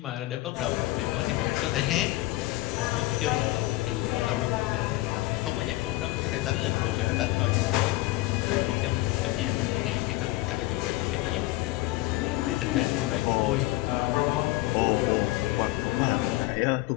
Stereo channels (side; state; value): right; quieter; 18.7 dB